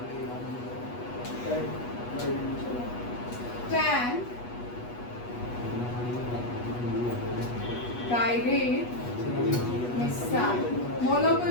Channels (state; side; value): late; right; 8.2 ms